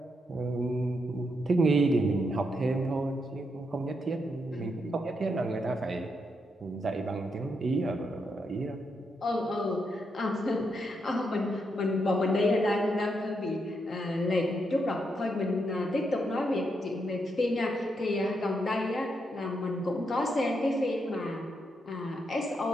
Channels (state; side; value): normal; both; correlation 0.81